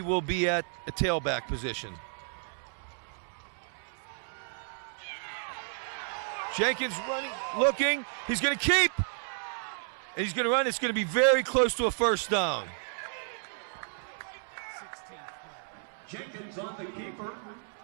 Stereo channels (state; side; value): silent; left; 56 dB below the other